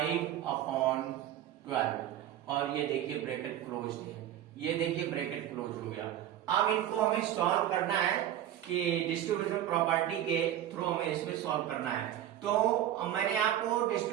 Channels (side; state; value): left; quieter; 11.7 dB